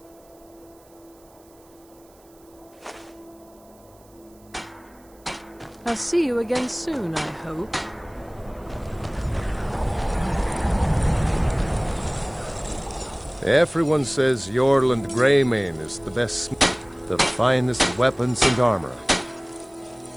I'll see you again soon, I hope. Everyone says Yorland Greymane is the best, the finest weapons and armor.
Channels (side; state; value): right; noise; hiss, 29 dB below the sound